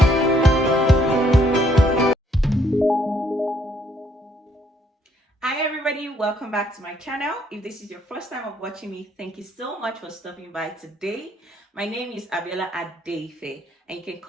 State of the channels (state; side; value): normal; both; correlation 0.69